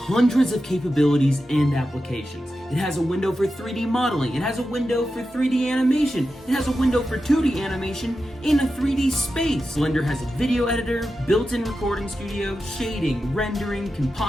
of capabilities and applications. It has a window for 3D modeling, it has a window for 3D animation, it has a window for 2D animation in a 3D space. Blender has a video editor, built-in recording studio, shading, rendering,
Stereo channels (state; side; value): normal; both; correlation 0.91